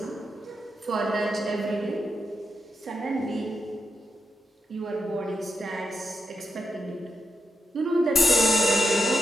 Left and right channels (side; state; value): both; normal; correlation 0.85